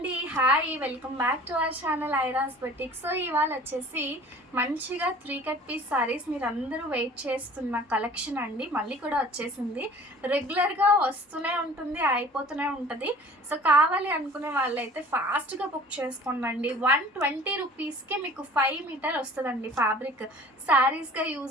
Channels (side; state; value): both; normal; correlation 0.47